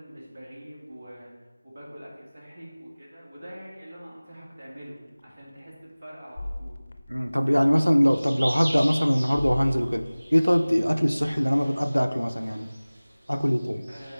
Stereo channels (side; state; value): both; inverted; correlation -0.99